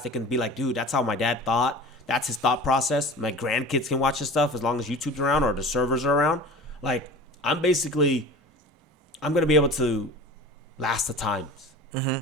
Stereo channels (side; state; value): both; normal; correlation 0.38